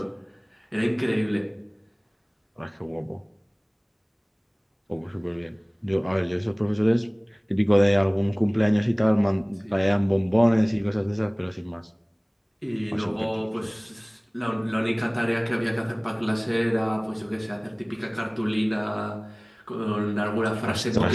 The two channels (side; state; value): both; identical; correlation 1.00